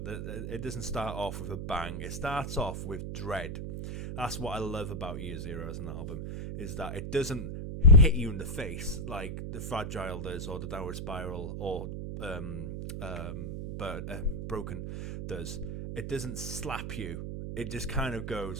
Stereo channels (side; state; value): right; noise; hum, 5 dB below the sound